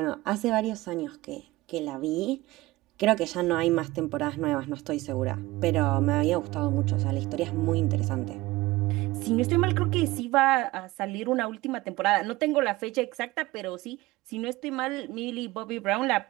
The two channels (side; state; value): left; quieter; 19.4 dB